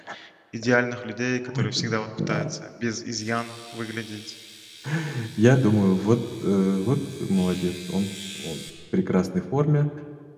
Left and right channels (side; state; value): both; identical; correlation 1.00